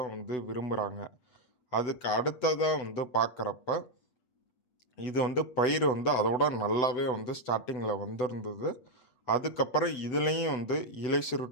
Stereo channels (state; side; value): late; right; 7.9 ms